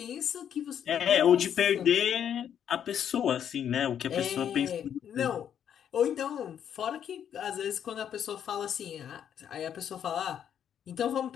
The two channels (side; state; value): right; quieter; 9.1 dB